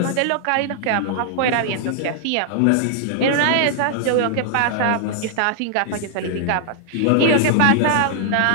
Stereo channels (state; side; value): different; both; correlation -0.01